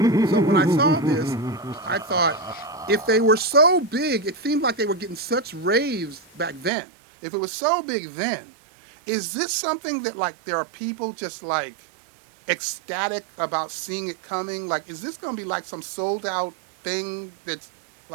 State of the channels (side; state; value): left; drops out; at 6.7 s